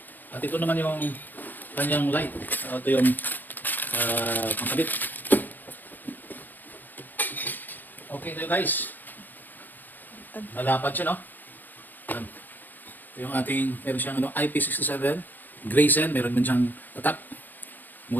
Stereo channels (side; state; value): right; late; 0.087 ms